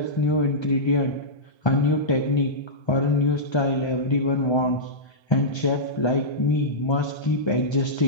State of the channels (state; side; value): late; right; 1.3 ms